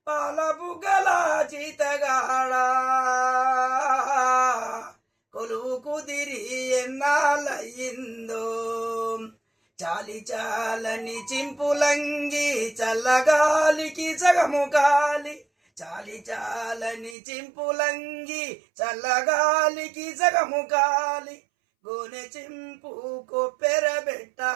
పాల బుగ్గల చీతగాడ కొలువు కుదిరి ఎన్నాళ్ళయిందో చాలి చాలని చింపులంగి చల్లగాలికి సగము కాలి చాలి చాలని చింపులంగి చల్లగాలికి సగము కాలి గోనె చింపు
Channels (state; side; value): drops out; left; at 17.2 s